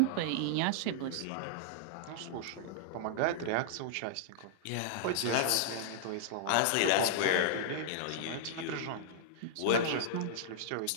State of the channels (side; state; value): both; different; correlation -0.02